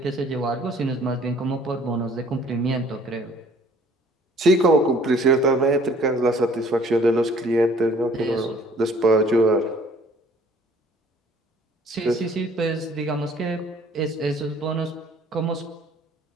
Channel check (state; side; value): normal; both; correlation 0.55